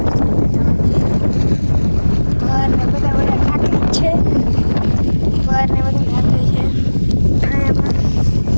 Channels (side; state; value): both; inverted; correlation -1.00